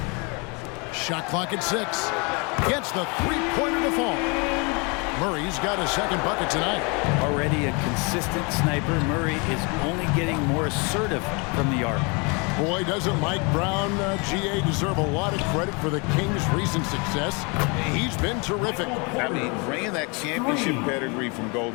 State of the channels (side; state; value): right; quieter; 31.1 dB